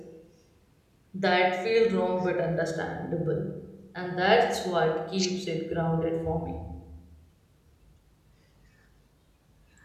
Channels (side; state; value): both; identical; correlation 1.00